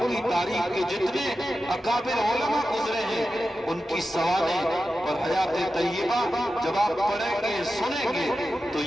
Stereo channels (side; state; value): both; normal; correlation 0.91